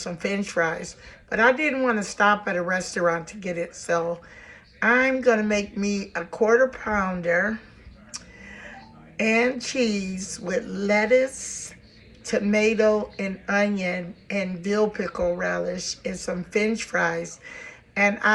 French fries. But I didn't want to stop at a restaurant to get it, so I'm gonna make me a quarter pounder and cheese with lettuce, tomato, and onion, and dill pickle relish, and some French fries. And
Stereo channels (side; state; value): both; identical; correlation 1.00